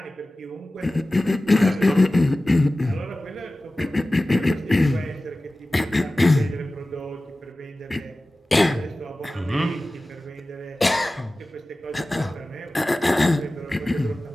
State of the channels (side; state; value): both; normal; correlation 0.96